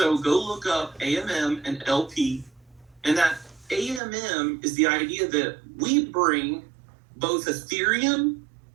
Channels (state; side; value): drops out; left; at 4.0 s